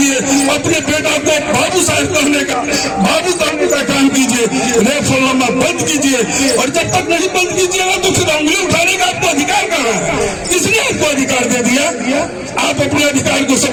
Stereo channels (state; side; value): identical; both; correlation 1.00